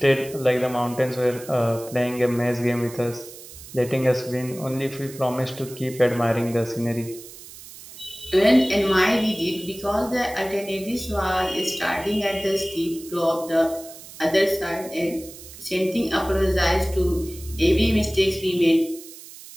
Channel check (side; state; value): right; noise; hiss, 16 dB below the sound